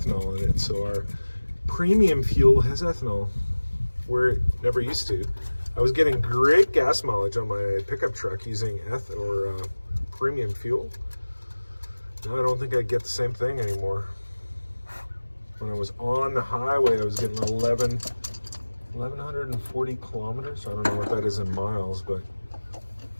in it. So our premium fuel has ethanol, where it never used to. I was getting great gas mileage on my pickup truck using premium fuel. Now I don't think I get the same thing anymore. When I was on the highway, I was getting 1,140 kilometers. I don't know what that is in miles, but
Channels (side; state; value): both; inverted; correlation -1.00